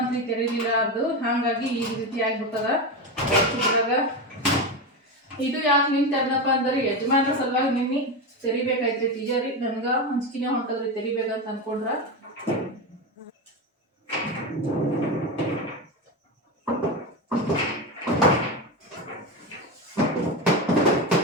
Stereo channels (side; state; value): both; normal; correlation 0.17